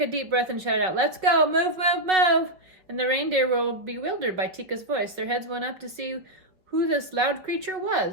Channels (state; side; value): late; left; 5.4 ms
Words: a deep breath and shouted out, "Let's go! Move, move, move!" And the reindeer were bewildered by Teeka's voice. Their heads went up to see who this loud creature